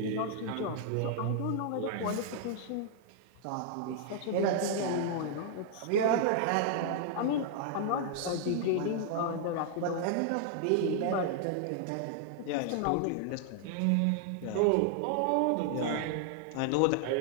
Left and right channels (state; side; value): different; both; correlation 0.00